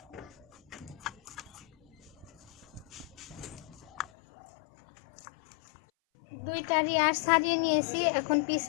দুইটারই আঁশ ছাড়িয়ে নিয়েছি, এখন পিস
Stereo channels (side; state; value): right; drops out; at 4.1 s